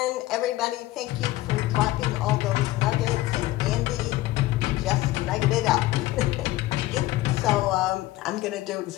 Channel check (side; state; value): right; quieter; 17.2 dB